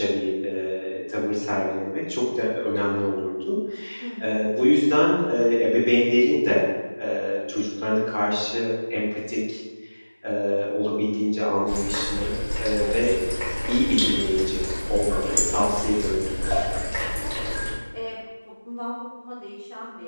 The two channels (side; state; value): both; inverted; correlation -1.00